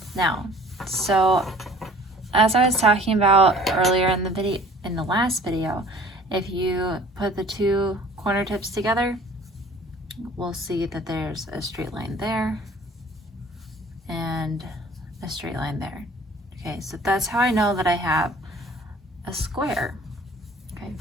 now. So as I was talking about earlier in the video, in the last video, if you put the two corner tips together, we'll see that there's a straight line there and a straight line there. Okay, so that's how I know that I have a square. Okay.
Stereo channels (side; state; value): both; normal; correlation 0.50